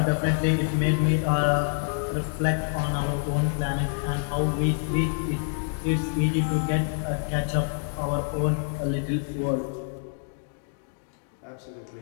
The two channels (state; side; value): silent; right; digital silence